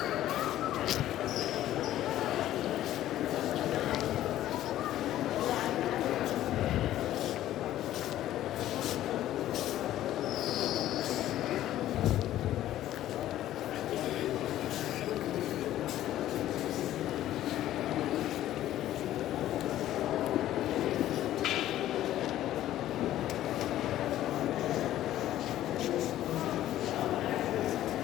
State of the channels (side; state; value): right; quieter; 13.3 dB